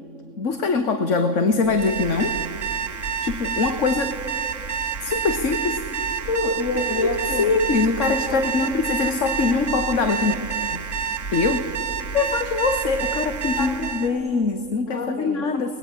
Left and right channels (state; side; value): late; right; 3.6 ms